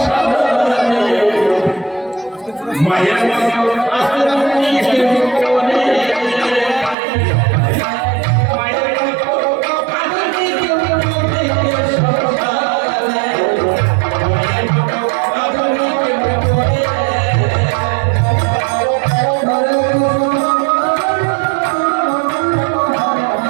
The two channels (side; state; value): left; drops out; at 7.0 s